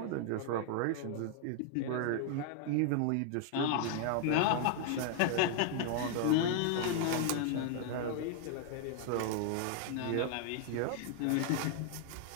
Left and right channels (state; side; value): different; both; correlation 0.00